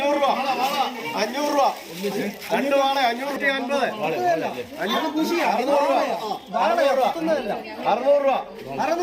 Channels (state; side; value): identical; both; correlation 1.00